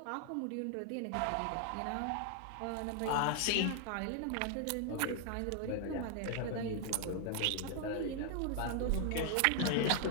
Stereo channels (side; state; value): both; different; correlation 0.00